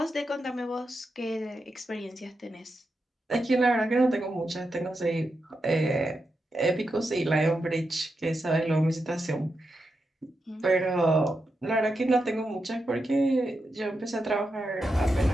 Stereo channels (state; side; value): normal; both; correlation 0.87